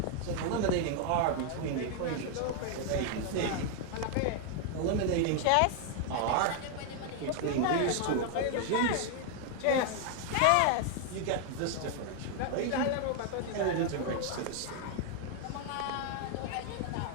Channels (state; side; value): different; both; correlation 0.00